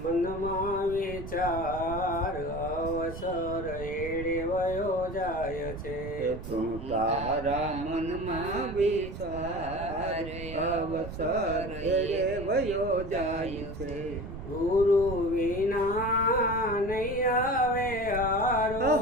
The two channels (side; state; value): right; noise; rumble, 10 dB below the sound